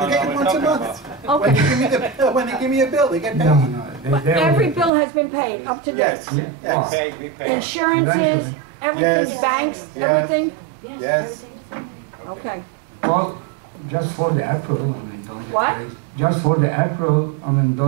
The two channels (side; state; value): left; drops out; at 4.9 s